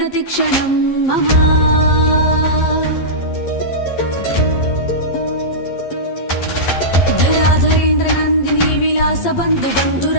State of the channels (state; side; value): late; right; 11 ms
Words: मम धराधरेन्द्र नन्दिनी विलास बन्धु